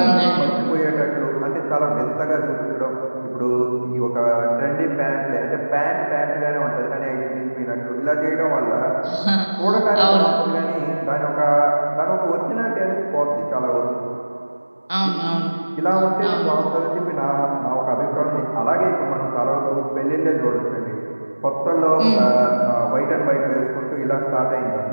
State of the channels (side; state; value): both; inverted; correlation -1.00